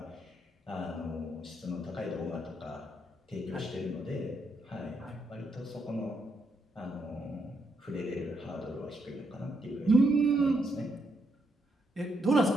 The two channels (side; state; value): both; normal; correlation 0.78